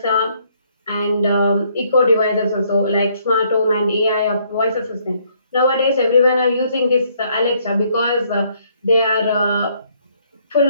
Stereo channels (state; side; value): inverted; both; correlation -0.67